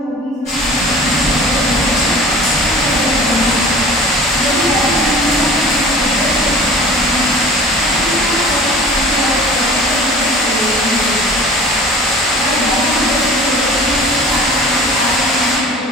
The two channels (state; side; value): normal; both; correlation 0.43